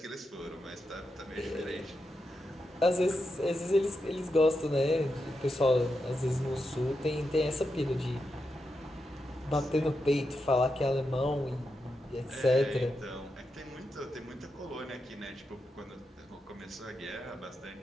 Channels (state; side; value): normal; both; correlation 0.87